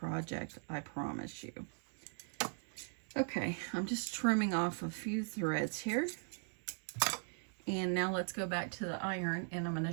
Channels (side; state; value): left; silent; 52 dB below the other